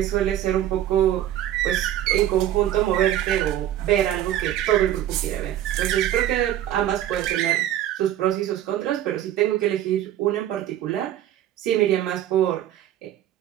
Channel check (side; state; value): left; quieter; 12.1 dB